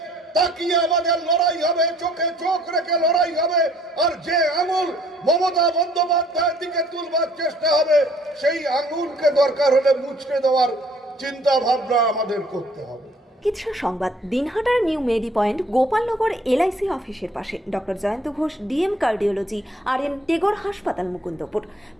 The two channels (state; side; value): normal; both; correlation 0.59